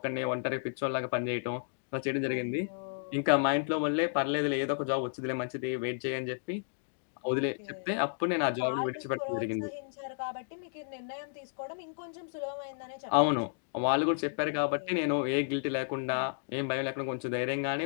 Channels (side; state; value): right; silent; digital silence